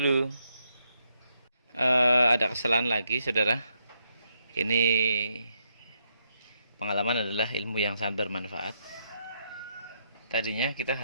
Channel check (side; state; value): both; inverted; correlation -0.78